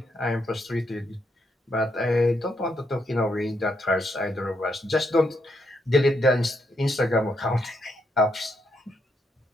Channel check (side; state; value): both; normal; correlation 0.78